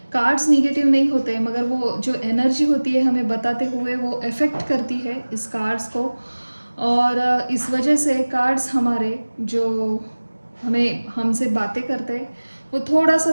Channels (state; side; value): inverted; both; correlation -1.00